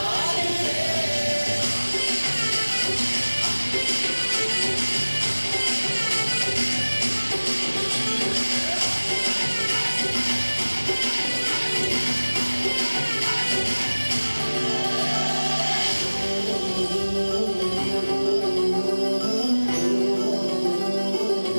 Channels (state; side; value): inverted; both; correlation -1.00